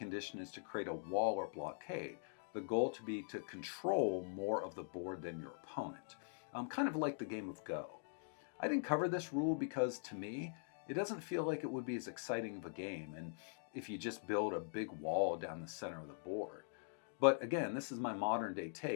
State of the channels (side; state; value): right; silent; digital silence